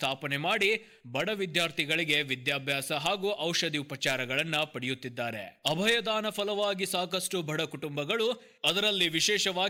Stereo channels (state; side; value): identical; both; correlation 1.00